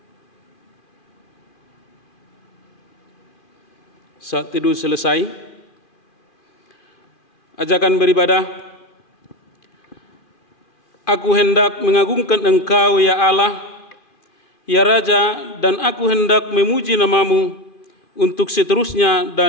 Saat teduh selesai, ajakan beribadah. Aku hendak mengagungkan Engkau, ya Allah, ya Raja, dan aku hendak memuji nama-Mu untuk seterusnya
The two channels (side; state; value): right; late; 2.4 ms